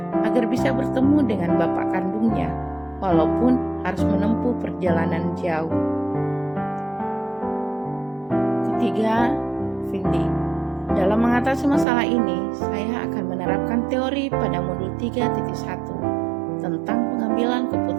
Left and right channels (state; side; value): drops out; left; at 11.9 s